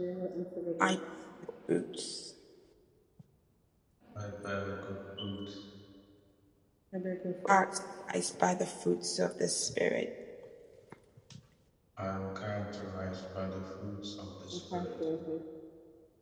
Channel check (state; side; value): identical; both; correlation 1.00